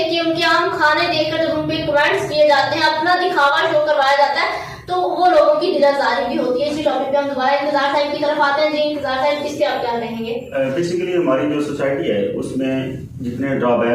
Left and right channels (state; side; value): identical; both; correlation 1.00